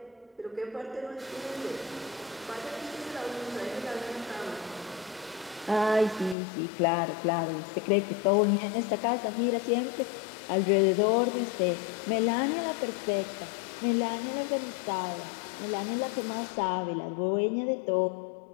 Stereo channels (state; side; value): drops out; right; at 6.4 s